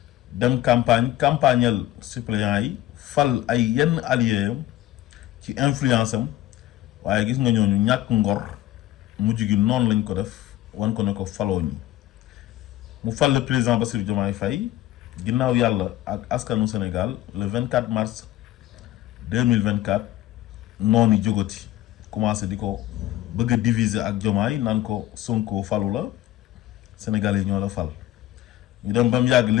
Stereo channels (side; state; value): right; quieter; 14.6 dB